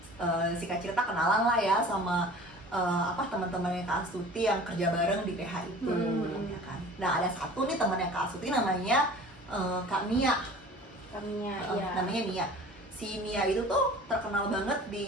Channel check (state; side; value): normal; both; correlation 0.43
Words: si Kak Cirta kenalan lah ya sama teman-temannya Kak Astuti yang kerja bareng di PH itu, ya kan. Nah ada satu nih temannya Kak Astuti namanya Kak Mia. Kaminya, Namanya Mia. Si Mia itu tuh terkenal banget